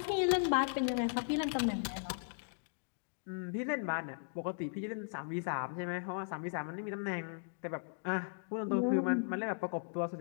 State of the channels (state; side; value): silent; right; digital silence